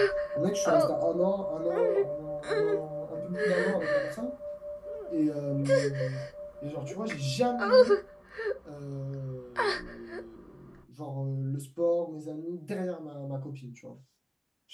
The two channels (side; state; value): both; identical; correlation 1.00